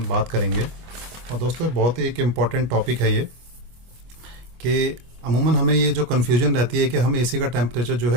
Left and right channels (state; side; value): late; left; 25 ms